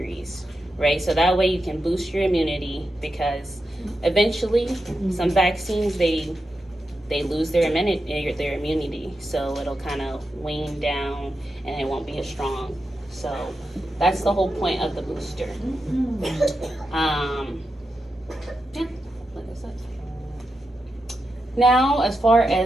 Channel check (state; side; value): normal; both; correlation 0.88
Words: right? So that way you can boost your immunity, because eventually some vaccines, they lose their immunity, so it'll kind of wane down and it won't be as strong. So that's the whole point of the booster. Yeah, like I said. Now, as far